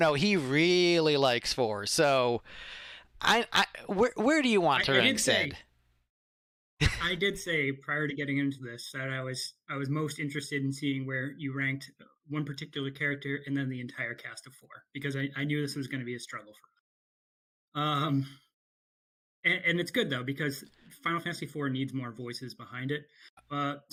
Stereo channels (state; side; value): identical; both; correlation 1.00